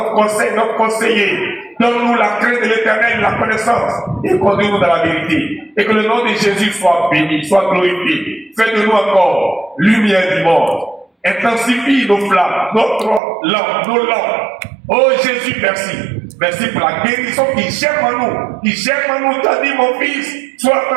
conseil, notre conseiller. Donne-nous la crainte de l'Éternel, la connaissance, et conduis-nous dans la vérité. Et que le nom de Jésus soit béni, soit glorifié. Fais de nous encore lumière du monde. Intensifie nos flammes, notre lampe, nos lampes. Oh Jésus, merci. Merci pour la guérison qui germe en nous. Qui germe en nous. Tu as dit, mon fils, sois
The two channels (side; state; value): left; drops out; at 13.2 s